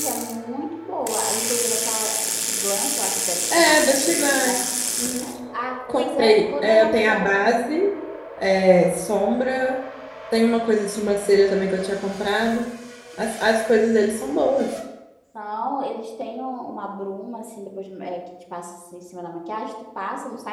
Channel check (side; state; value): both; identical; correlation 1.00